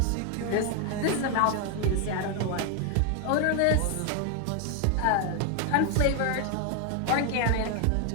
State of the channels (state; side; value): different; both; correlation 0.01